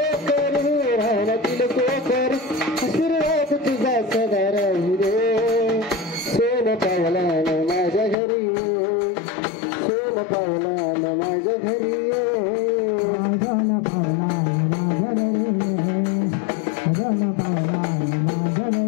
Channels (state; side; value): drops out; right; at 8.2 s